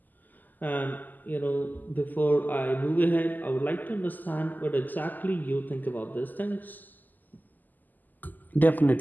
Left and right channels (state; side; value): late; right; 0.085 ms